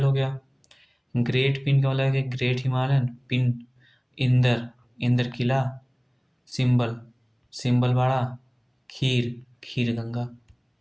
हो गया। ग्रेट पिन का मतलब है ग्रेट हिमालयन, पिन इंदर, इंदर किला, सिंबल, सिंबल बाड़ा, खीर, खीर गंगा।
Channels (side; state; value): both; identical; correlation 1.00